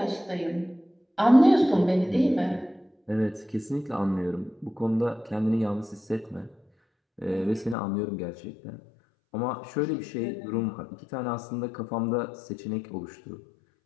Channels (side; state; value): right; drops out; at 7.8 s